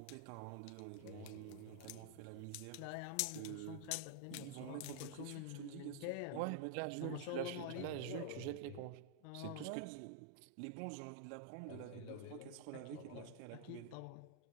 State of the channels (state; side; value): different; both; correlation -0.01